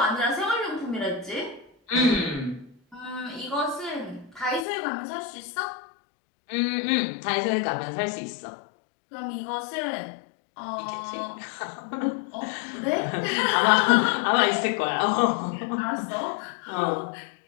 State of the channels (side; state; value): right; drops out; at 4.7 s